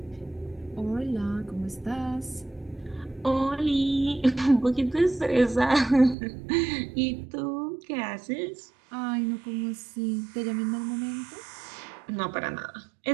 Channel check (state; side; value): drops out; left; at 6.2 s